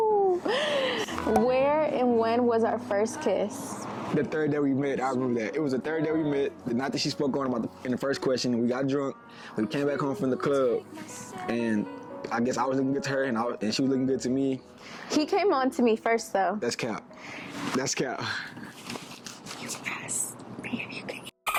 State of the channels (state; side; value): identical; both; correlation 1.00